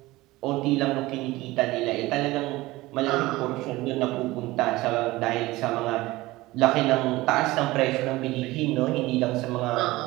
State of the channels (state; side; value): quieter; left; 19.2 dB